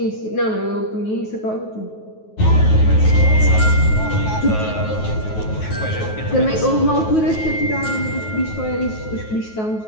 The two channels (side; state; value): right; late; 9.3 ms